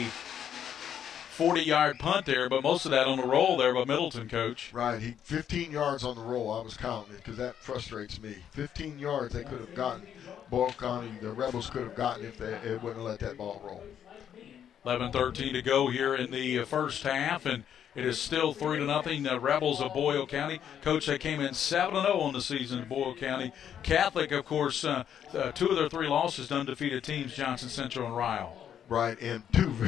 40-yard punt there, but most of that on the roll there by Middleton, Coach. Right, 15 yards on the roll. I was counting it because that frustrates me. 15 yards they could have gotten. Boyle County, the Rebels could have gotten if they wouldn't have let that ball roll. 11:13 to go here in the first half, and it is still 3-0. The Rebels of Boyle County. Coach, they came in 7-0 on the season in Boyle County. Catholic, of course, 2 of their 3 losses to undefeated teams, Johnson Central and Ryle. Right, and 2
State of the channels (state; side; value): quieter; right; 9.2 dB